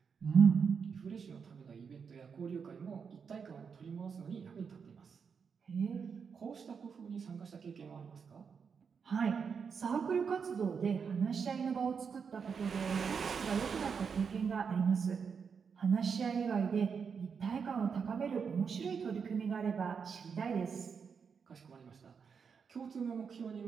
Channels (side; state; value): left; quieter; 6.2 dB